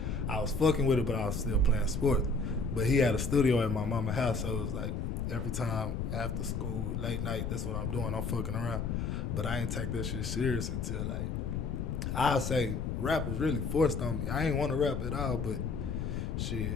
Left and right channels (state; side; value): noise; left; rumble, 2 dB below the sound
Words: I was fucking with it, but I was still playing sports. But he had a studio at my mama's house, so it was like every time after school, late night, that's what I'm doing. I'm fucking around. But I ain't take that shit serious until like I'll say rap was really forced on me. I ain't want to rap at all, but